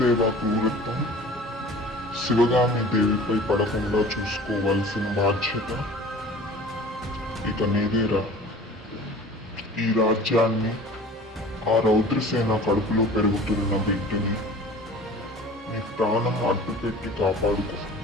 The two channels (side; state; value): both; normal; correlation 0.43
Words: క్రూరత్వం శివగామి దేవిపై పడకుండా చూసుకోవాల్సిన బాధ్యత ఇక నీదేరా. ఈ రాజ్యాన్ని ఆ రౌద్రసేన కడుపులో పెరుగుతున్న బిడ్డని నీ ప్రాణం అడ్డుపెట్టి కాపాడుకో.